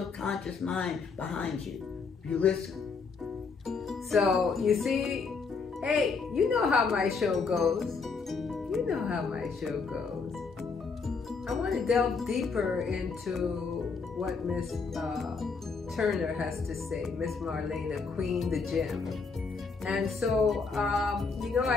conscious mind behind you. You listen. So you see, hey, you know how my show goes. You know how my show goes. I want to delve deeper into what Miss Turner has to say, Miss Marlena, Queen the Gym. And so, you know,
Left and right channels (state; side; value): quieter; right; 4.8 dB